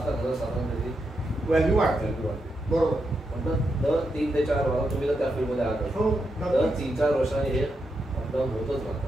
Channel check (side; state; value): both; normal; correlation 0.84